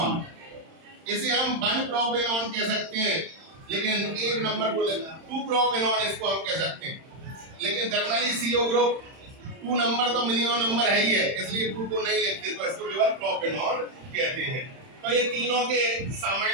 इसे हम 1 प्रोपेनॉन कह सकते हैं, लेकिन एक नंबर को 2 प्रोपेनॉन इसको हम कह सकते हैं, लेकिन जनरली CO ग्रुप 2 नंबर तो मिनिमम नंबर है ही है, इसलिए 2 को नहीं लिखते, तो इसको केवल प्रोपेनॉन कहते हैं। तो ये तीनों के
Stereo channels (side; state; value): left; late; 31 ms